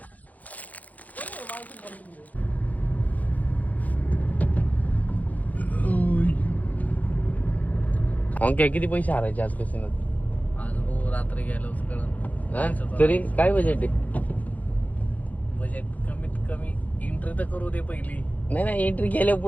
ओके किती पैसे हारायचे आज कसे आज हो रात्री गेलो कळण तरी काय बजेट आहे बजेट कमीत कमी एंट्री तर करू दे पहिली नाही एंट्री केल्या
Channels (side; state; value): right; late; 0.078 ms